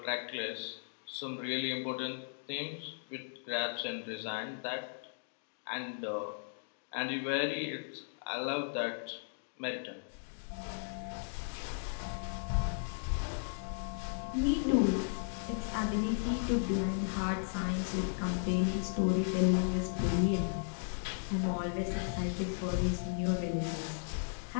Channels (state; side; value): silent; right; digital silence